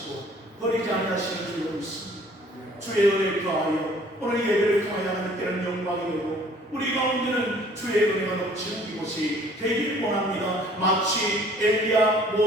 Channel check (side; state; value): both; normal; correlation 0.55